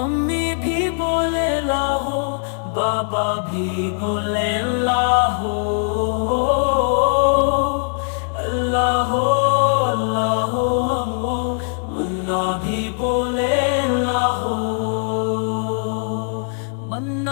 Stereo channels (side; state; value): right; silent; digital silence